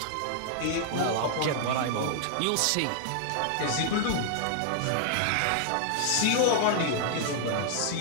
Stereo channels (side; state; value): both; different; correlation -0.01